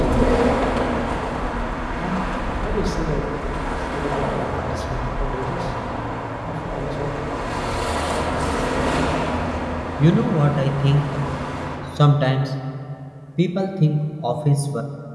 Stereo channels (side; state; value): both; identical; correlation 1.00